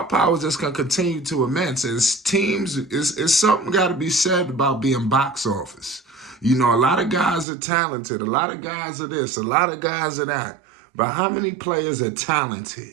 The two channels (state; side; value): drops out; left; at 7.5 s